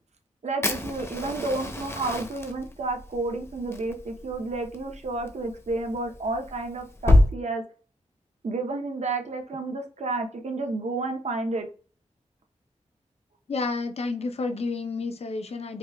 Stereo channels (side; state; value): both; normal; correlation 0.68